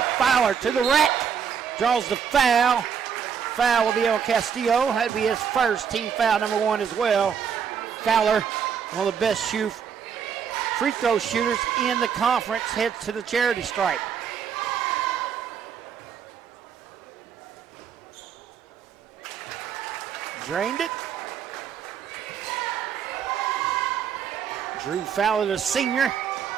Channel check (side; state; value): left; quieter; 7.4 dB